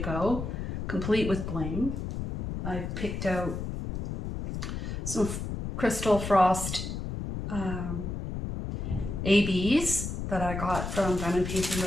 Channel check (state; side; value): noise; left; rumble, 5 dB below the sound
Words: complete with bling. I've picked out some Crystal Frost ABs that I got from Diamond Painting